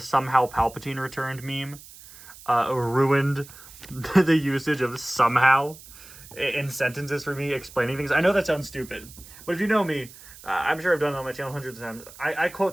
Palpatine returned meme ruined the usage of somehow in sentences for me explaining things. I know that sounds stupid, but if you know me, I'm sure I've done it on my channel hundreds of times. I quote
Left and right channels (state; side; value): noise; right; hiss, 19 dB below the sound